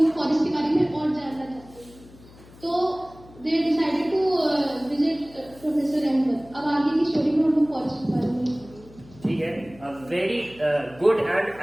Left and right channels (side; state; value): left; noise; hum, 23 dB below the sound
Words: फॉरेस्ट के बारे में और जानना चाहते थे, तो they decided to visit professor Ahmad. अब आगे की स्टोरी में हम लोग फॉरेस्ट के बारे में, ठीक है। Very good and